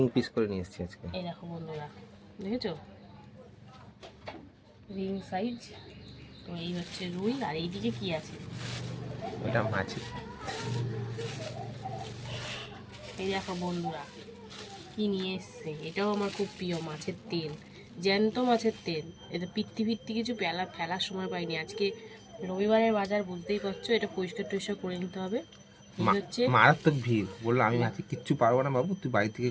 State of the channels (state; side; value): identical; both; correlation 1.00